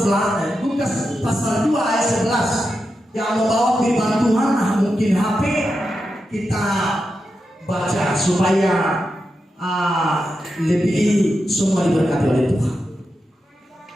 Lukas pasal 2 ayat 11 yang membawa firman Tuhan. Mungkin HP kita baca supaya lebih semua diberkati oleh Tuhan.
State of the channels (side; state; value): both; normal; correlation 0.88